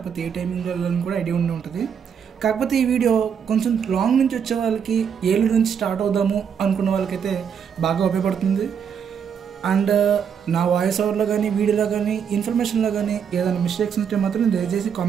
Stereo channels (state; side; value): quieter; left; 7.4 dB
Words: ఏ టైమింగ్ వెళ్ళాలని కూడా ఐడియా ఉండే ఉంటుంది. కాకపోతే ఈ వీడియో కొంచెం లాంగ్ నుంచి వచ్చే వాళ్ళకి, ఏలూరు నుంచి స్టార్ట్ అవుదాము అనుకున్న వాళ్ళకైతే బాగా ఉపయోగపడుతుంది. అండ్ నా వాయిస్ ఓవర్లో కానీ, వీడియోలో కానీ, ఇన్ఫర్మేషన్లో కానీ ఏదైనా మిస్టేక్స్ ఉంటే మాత్రం దయచేసి